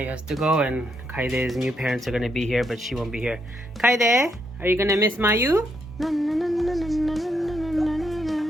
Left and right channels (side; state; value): both; normal; correlation 0.77